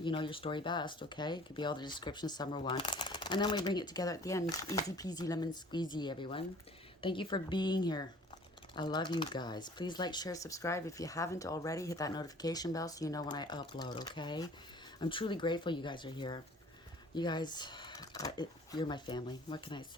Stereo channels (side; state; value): both; normal; correlation 0.51